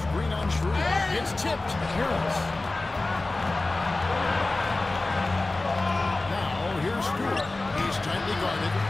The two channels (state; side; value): quieter; right; 3.1 dB